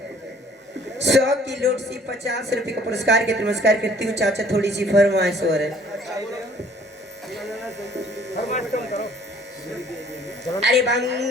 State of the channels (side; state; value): both; normal; correlation 0.57